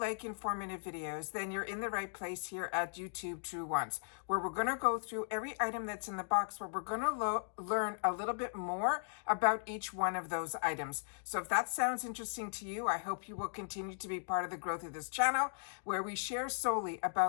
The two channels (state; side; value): silent; right; digital silence